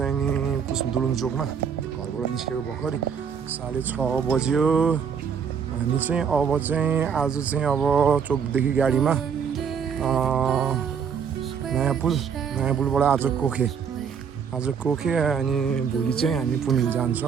नि दुलुङ चोकमा घरबाट निस्केको भर्खरै 6:30 बज्यो। हामी चाहिँ अब चाहिँ आज चाहिँ अब चोकदेखि गाडीमा नयाँ पुलबाट आज कोखे अनि भोलि चाहिँ हामी पुनिल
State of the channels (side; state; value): left; quieter; 7.0 dB